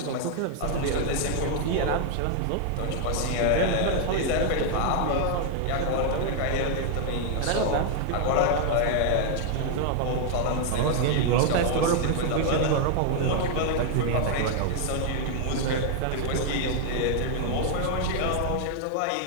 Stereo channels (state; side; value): different; both; correlation 0.00